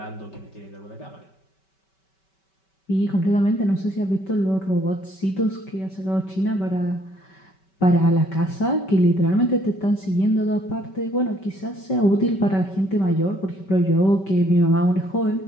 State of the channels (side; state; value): right; late; 5.2 ms